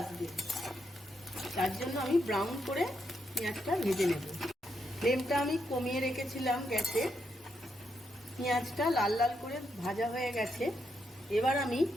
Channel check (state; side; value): normal; both; correlation 0.80